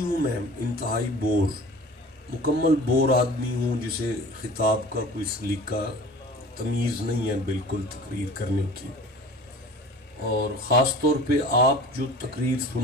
ہوں میں، انتہائی بور، مکمل بور آدمی ہوں جسے خطاب کا کوئی سلیقہ تمیز نہیں ہے بالکل تقریر کرنے کی. اور خاص طور پہ آپ جو تقریر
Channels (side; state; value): both; normal; correlation 0.42